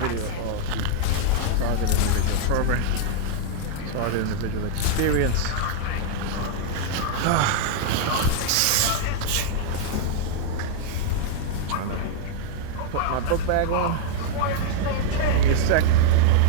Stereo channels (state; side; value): different; both; correlation -0.01